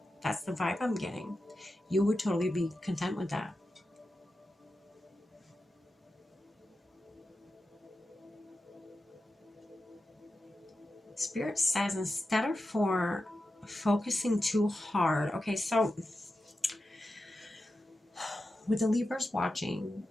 That's the vibe I'm getting. You would totally be content with that. Spirit says instead of for focusing too hard. Okay, so with the Libras watching,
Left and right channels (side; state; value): both; normal; correlation 0.91